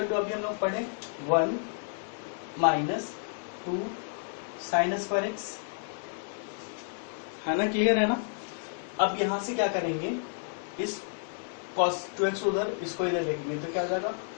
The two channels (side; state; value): right; silent; 57 dB below the other